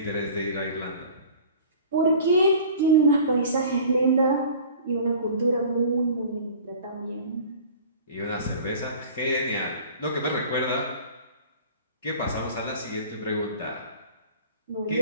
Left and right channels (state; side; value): inverted; both; correlation -0.44